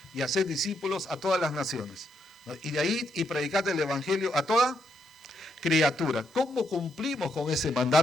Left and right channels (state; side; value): normal; both; correlation 0.78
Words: y hacer discípulos a todas las naciones? ¿No? Y de ahí y predicar el Evangelio a toda criatura. ¿Cómo cumplimos con ese